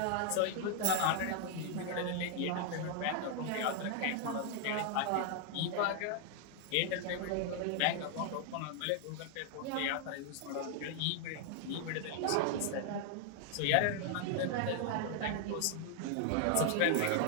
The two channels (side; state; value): both; different; correlation 0.00